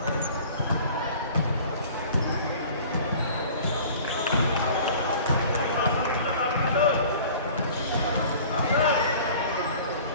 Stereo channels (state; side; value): inverted; both; correlation -0.46